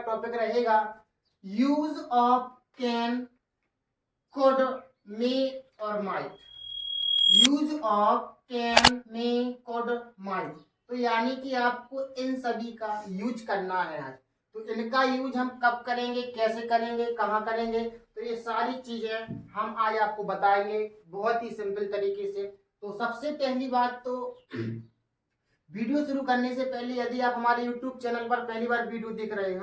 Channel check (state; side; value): identical; both; correlation 1.00